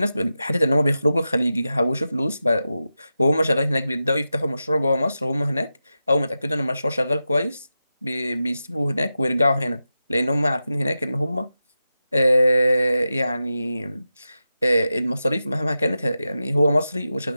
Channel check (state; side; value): inverted; both; correlation -0.91